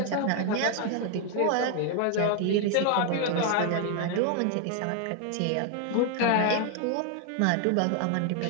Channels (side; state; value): both; different; correlation 0.01